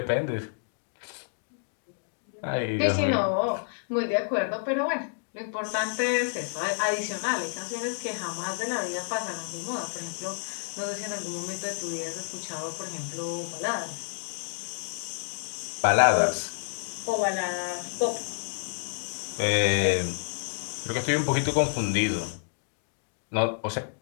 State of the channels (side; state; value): right; silent; digital silence